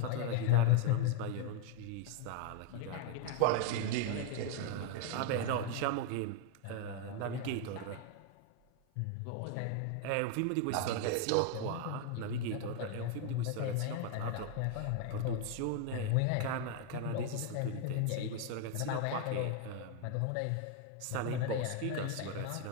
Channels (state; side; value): different; both; correlation 0.01